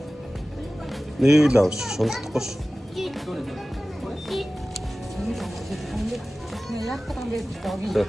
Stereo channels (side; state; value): both; normal; correlation 0.96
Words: 내일 나오시. 손 뜯고시. 그냥 약간 게 저기. 자,